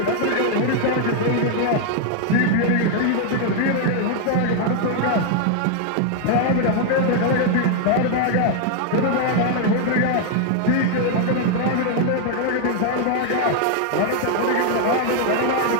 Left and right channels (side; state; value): both; different; correlation 0.00